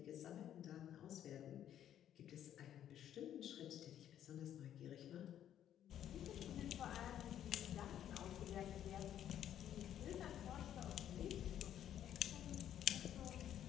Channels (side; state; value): right; quieter; 10.7 dB